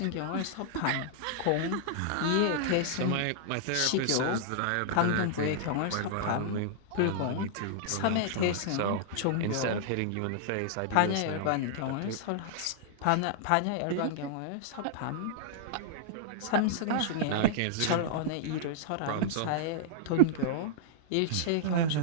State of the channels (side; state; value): both; different; correlation -0.01